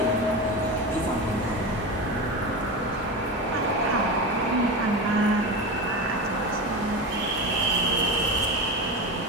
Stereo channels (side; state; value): both; normal; correlation 0.23